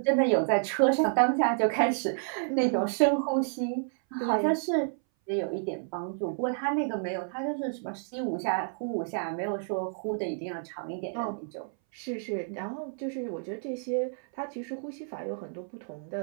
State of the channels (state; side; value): silent; left; 58 dB below the other